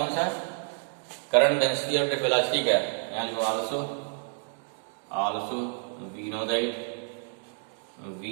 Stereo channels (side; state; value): left; silent; 59 dB below the other